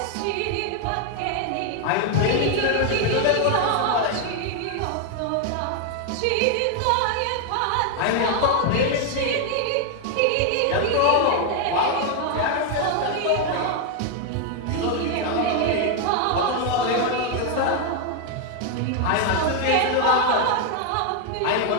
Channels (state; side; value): different; both; correlation 0.01